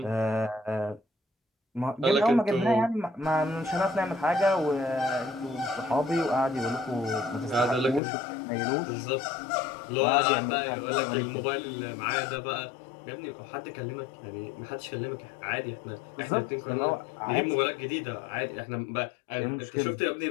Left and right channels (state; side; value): drops out; right; at 8.0 s